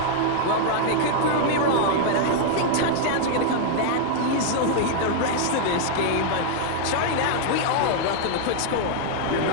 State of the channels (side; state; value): both; different; correlation -0.01